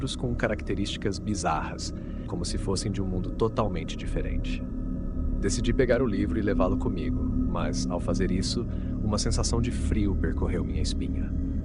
com características bizarras, como se fossem de um mundo totalmente diferente. Decidi pegar o livro e levá-lo comigo, mas, ao fazer isso, uma sensação de frio percorreu minha espinha.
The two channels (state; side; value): identical; both; correlation 1.00